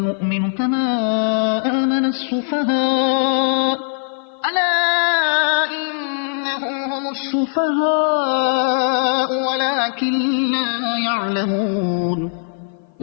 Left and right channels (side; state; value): right; silent; 56 dB below the other